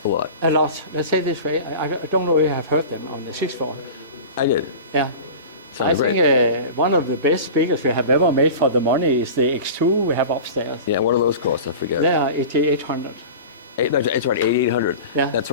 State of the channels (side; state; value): both; inverted; correlation -0.34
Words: A lot. A lot. Let's say it this way. I don't know if you have heard them on the 6-4. I did. Yeah. Sounds great. I think one of the best speakers we have ever made for the money is the X2 we have upstairs. Yeah, what do those cost? I forget. They are 8,800. That's right, 8800. Yeah. That's